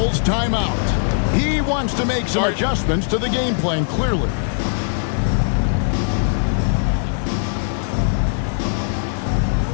timeout. He wants to make some adjustments to the game plan, clearly.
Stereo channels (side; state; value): right; silent; 60 dB below the other